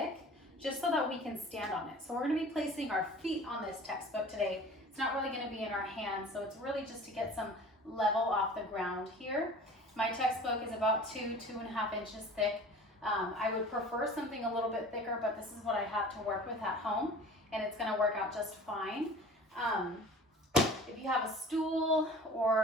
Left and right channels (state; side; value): normal; both; correlation 0.43